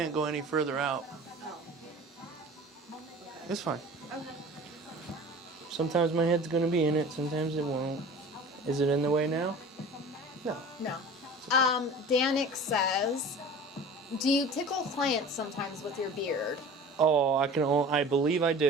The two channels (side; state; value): both; normal; correlation 0.40